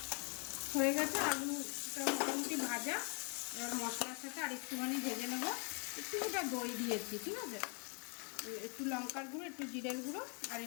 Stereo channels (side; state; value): right; quieter; 37.2 dB